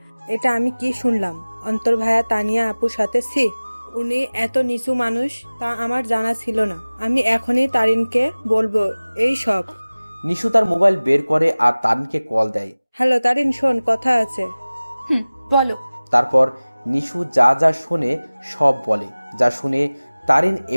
এটা আমি কি শুনলাম? অন্তর ভাইয়া তানিয়া আপুর সাথে উনি এত নিচু মানুষ তা আমার জানা ছিল না। আমি এখনই তারিনকে বলবো এই সব। নিশু তার মোবাইল বের করে আর তারিনকে কল দেয়। হ্যালো তারিন, শোন, কথা আছে। বলো। তারপর নিশু যা যা শোনে সব বলে। যা শুনে তারিন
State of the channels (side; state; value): both; inverted; correlation -0.99